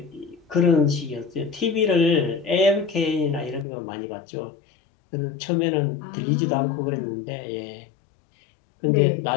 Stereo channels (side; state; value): right; drops out; at 3.7 s